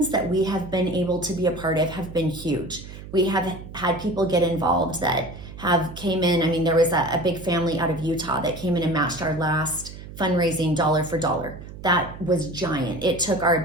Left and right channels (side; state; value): right; noise; hum, 14 dB below the sound